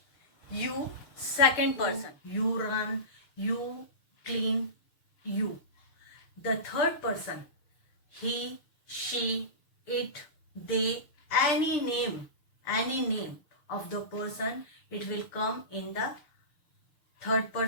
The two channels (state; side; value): late; right; 6.8 ms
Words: You, second person, you run, you clean, you. The third person, he, she, it, they, any name of the person, it will come in the third